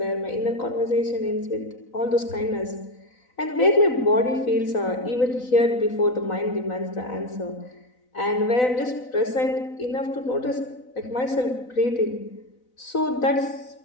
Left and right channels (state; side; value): late; right; 4.0 ms